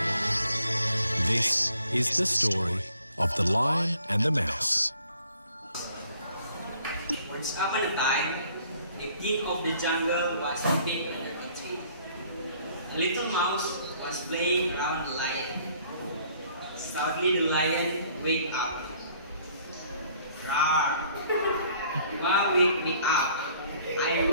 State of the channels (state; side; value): inverted; both; correlation -0.60